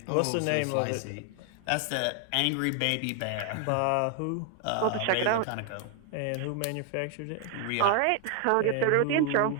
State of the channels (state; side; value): different; both; correlation 0.00